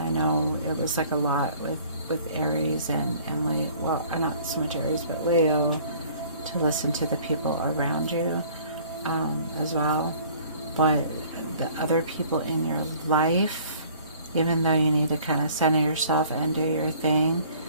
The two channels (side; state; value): both; inverted; correlation -0.53